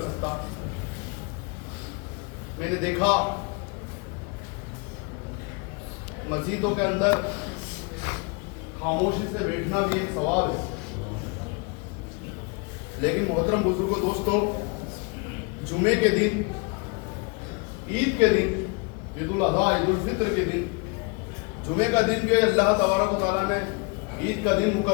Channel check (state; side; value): quieter; right; 31.9 dB